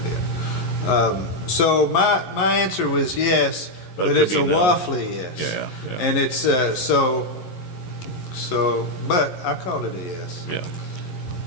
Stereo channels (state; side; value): late; right; 11 ms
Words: So my answer was yes, but it's a waffly yes. Yeah. And it's but I called it a yes. Yeah.